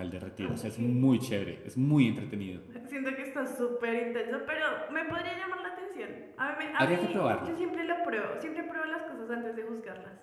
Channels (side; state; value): both; identical; correlation 1.00